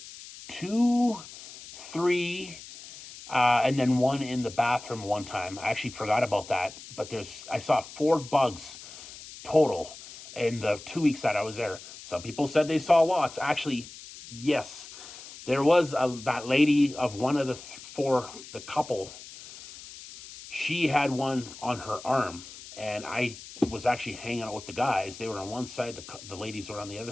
2, 3, and then one in the bathroom one time. I actually forgot about that, but I saw 4 bugs total in the 2 weeks that I was there. Some people said they saw lots. Actually, yes, there was that lady of one of the couple. She had one on her arm, and I was actually hanging out with the guys. They were on one side, the ladies were on the other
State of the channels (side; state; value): left; noise; hiss, 15 dB below the sound